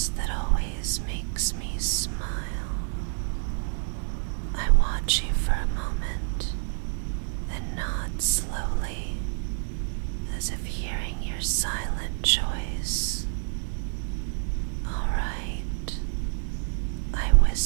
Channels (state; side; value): silent; left; digital silence